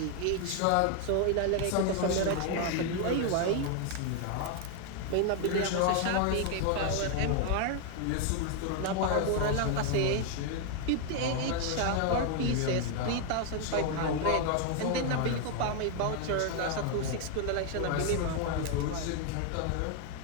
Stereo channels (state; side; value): different; both; correlation 0.00